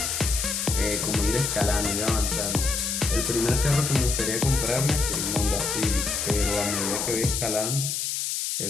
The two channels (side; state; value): left; noise; hiss, 1 dB below the sound